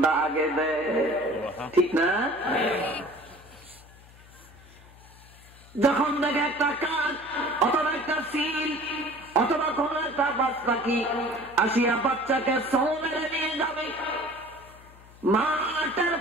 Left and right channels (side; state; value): left; noise; hum, 23 dB below the sound